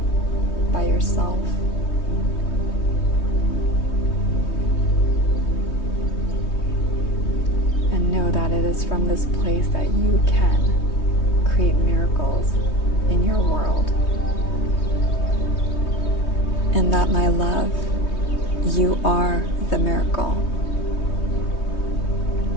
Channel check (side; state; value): right; late; 3.2 ms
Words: by yourself. And know that it is from this place that you can create miracles in your world. And that, my love, you are the miracle.